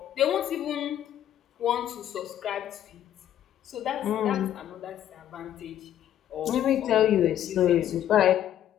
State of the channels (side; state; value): right; quieter; 11.1 dB